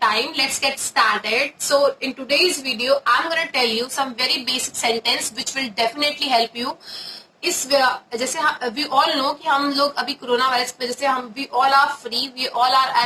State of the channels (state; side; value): identical; both; correlation 1.00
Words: time. Let's get started. So in today's video, I'm gonna tell you some very basic sentence which will definitely help you. जैसे वी ऑल नो कि हम लोग अभी कोरोना वायरस की वजह से हम we all are free, we all are